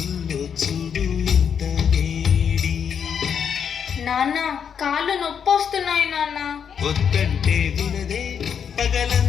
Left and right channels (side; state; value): right; quieter; 7.5 dB